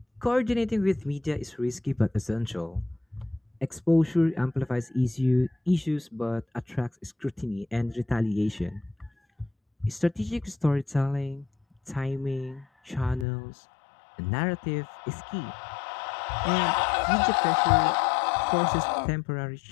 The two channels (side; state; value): right; drops out; at 13.2 s